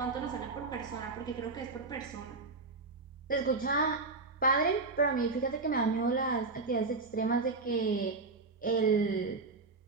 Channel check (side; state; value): left; quieter; 3.8 dB